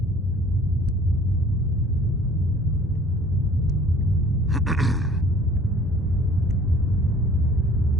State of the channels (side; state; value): both; normal; correlation 0.52